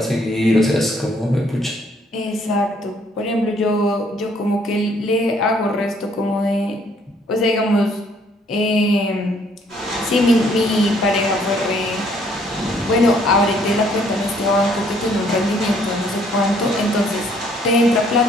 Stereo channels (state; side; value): normal; both; correlation 0.64